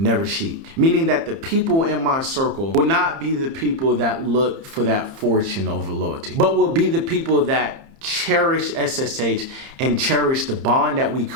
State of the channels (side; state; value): left; late; 30 ms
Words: sheep. Meaning that the people in my circle will not be the people that look for that fortune over loyalty, but will be the people that cherish SSH and cherish the bond that we